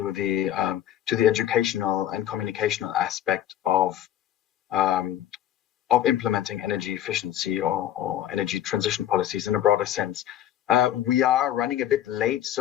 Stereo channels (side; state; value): right; quieter; 11.5 dB